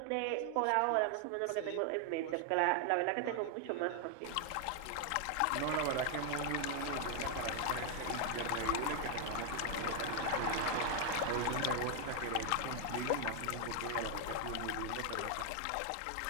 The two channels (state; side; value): different; both; correlation 0.00